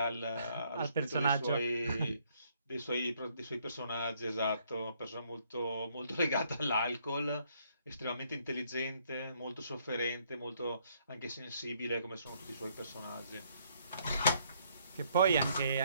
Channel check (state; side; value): inverted; both; correlation -0.68